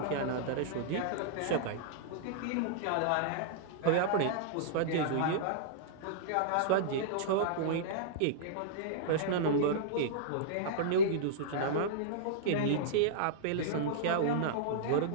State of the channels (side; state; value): both; different; correlation -0.02